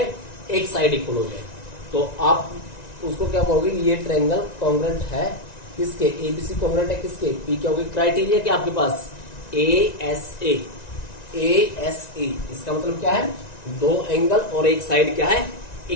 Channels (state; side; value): late; right; 1.9 ms